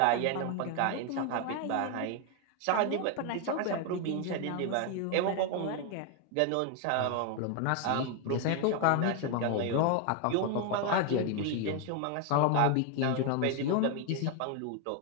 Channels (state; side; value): different; both; correlation 0.01